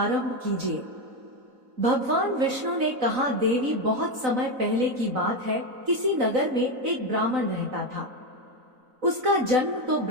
कीजिए। भगवान विष्णु ने कहा, देवी, बहुत समय पहले की बात है, किसी नगर में एक ब्राह्मण रहता था। उसका जन्म तो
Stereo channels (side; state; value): left; late; 3.9 ms